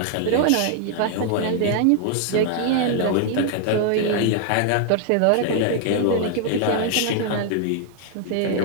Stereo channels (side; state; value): both; different; correlation 0.00